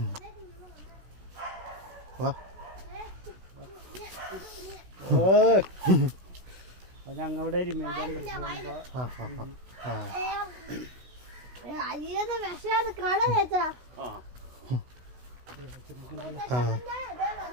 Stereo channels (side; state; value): left; late; 16 ms